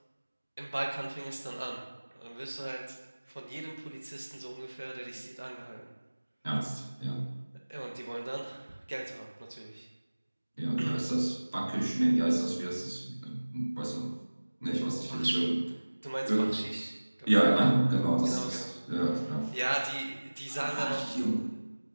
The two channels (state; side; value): inverted; both; correlation -1.00